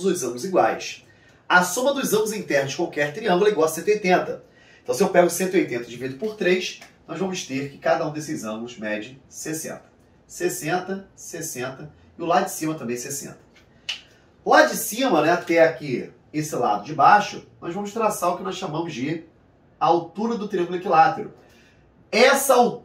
os ângulos iguais. A soma dos ângulos internos de qualquer triângulo é igual a 180. Então, se eu pego 180 e divido por 3, nós vamos ter que cada um desses ângulos mede 60. 60, 60 e o lado de cima também 60. Lá de cima, né, até aqui, esse lado de baixo, nós vamos traçar o que nós chamamos de altura do triângulo equilátero. Essa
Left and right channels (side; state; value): both; identical; correlation 1.00